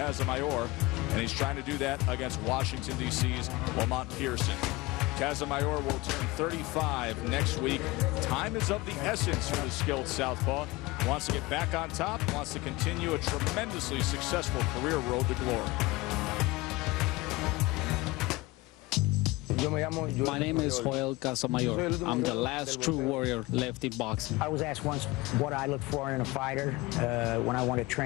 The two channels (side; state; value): right; quieter; 20.3 dB